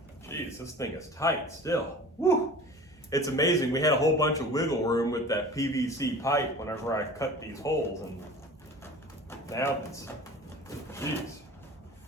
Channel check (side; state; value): both; normal; correlation 0.40